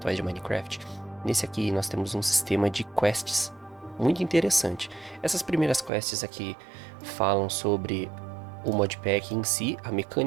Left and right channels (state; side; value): drops out; left; at 5.9 s